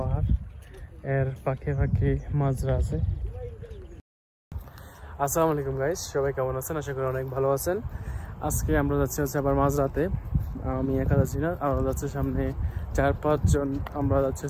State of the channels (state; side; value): identical; both; correlation 1.00